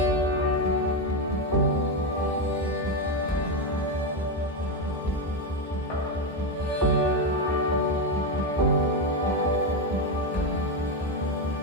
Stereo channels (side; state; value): both; normal; correlation 0.08